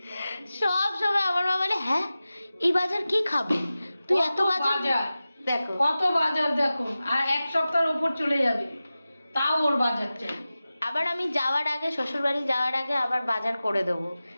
সব সময় আমার মা বলে হ্যাঁ এই বাজার কি খাবে তুই এত কত বাজার দেখো কত বাজার দেখো, আর এক সপ্তাহের উপর চলে যাবে তাও ওর বাজার চাই। আবার আমি যাওয়ার আগে শ্বশুরবাড়ি যাওয়ার আগে আবার বাজার করে দেবো,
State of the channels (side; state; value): both; inverted; correlation -0.95